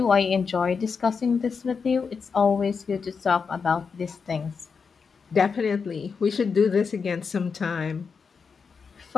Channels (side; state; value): right; quieter; 5.5 dB